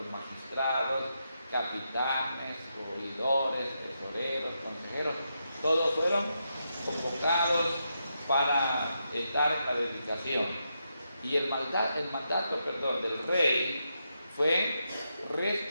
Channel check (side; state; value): both; inverted; correlation -0.84